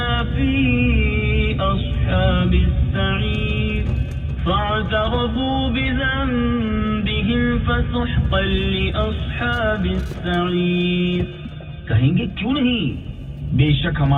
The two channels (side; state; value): both; identical; correlation 1.00